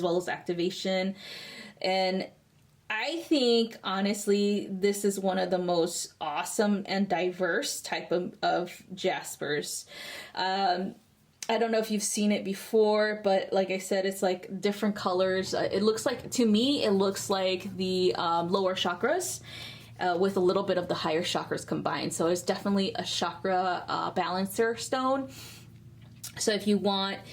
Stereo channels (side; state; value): both; identical; correlation 1.00